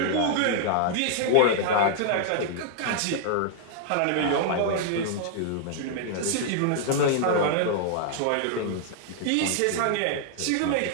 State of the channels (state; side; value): different; both; correlation -0.01